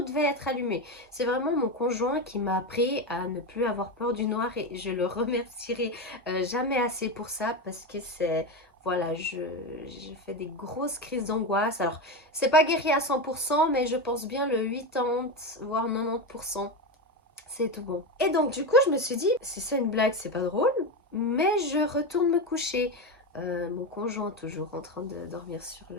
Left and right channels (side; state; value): both; normal; correlation 0.16